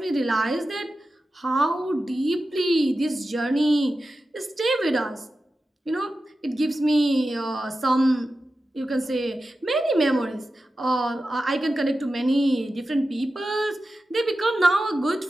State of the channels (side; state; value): both; normal; correlation 0.92